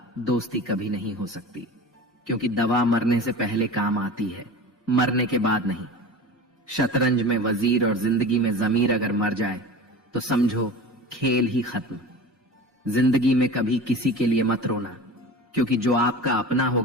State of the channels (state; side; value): normal; both; correlation 0.34